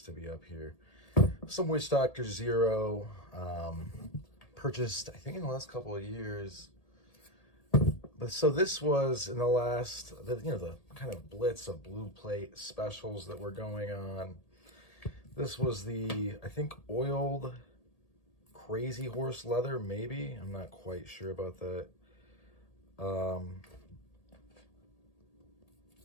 to be up here. Some Witchdoctor Zero, purchased, I think, in the last couple of years. But so this was in the last, the kind of blitz of blue plate specials that were going on. This was the, I think, oiled Crazyhorse leather, maybe. I'm not quite sure about that.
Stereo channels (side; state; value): right; late; 1.8 ms